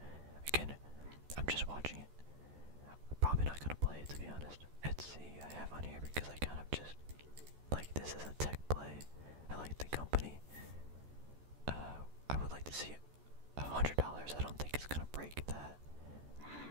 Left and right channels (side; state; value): left; late; 14 ms